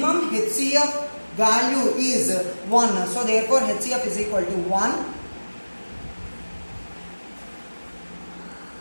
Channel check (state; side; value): inverted; both; correlation -1.00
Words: HCF value is 1. So therefore HCF is equal to 1.